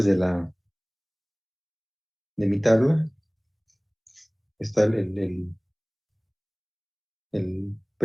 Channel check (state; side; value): identical; both; correlation 1.00